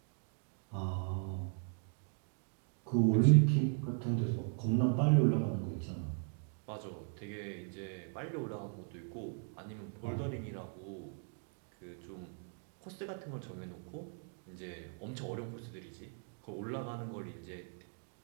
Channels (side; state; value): left; silent; 52 dB below the other